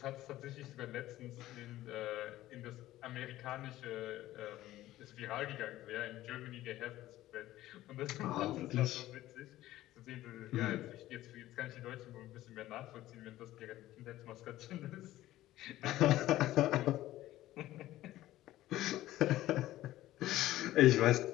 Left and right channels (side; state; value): right; quieter; 15.2 dB